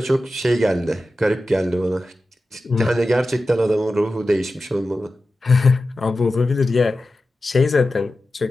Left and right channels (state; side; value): normal; both; correlation 0.93